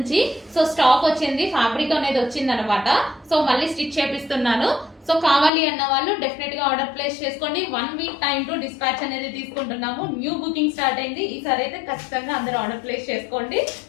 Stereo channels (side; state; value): right; drops out; at 5.5 s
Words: సో స్టాక్ వచ్చింది, ఫ్యాబ్రిక్ అనేది వచ్చింది అనమాట. సో మళ్ళీ స్టిచ్ చేపిస్తున్నాను. సో కావాలి అన్న వాళ్ళు డెఫినెట్ గా ఆర్డర్ ప్లేస్ చేసుకోండి. 1 వీక్ టైం టు డిస్పాచ్ అనేది తీసుకుంటున్నాము. న్యూ బుకింగ్ స్టార్ట్ అయింది. ఈసారి అయితే ఖచ్చితంగా అందరూ ఆర్డర్ ప్లేస్ చేసుకోండి.